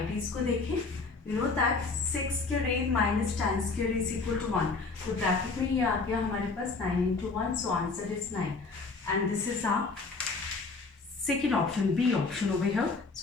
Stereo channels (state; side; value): quieter; right; 4.1 dB